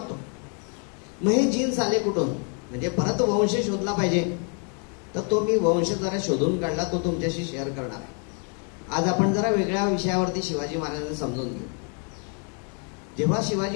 मग हे जीन्स आले कुठून? म्हणजे परत वंश शोधला पाहिजे. तर तो मी वंश जरा शोधून काढला, तो तुमच्याशी शेअर करणार आहे. आज आपण जरा वेगळ्या विषयावरती शिवाजी महाराजांना समजून घेऊ. जेव्हा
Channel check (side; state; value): right; quieter; 40.0 dB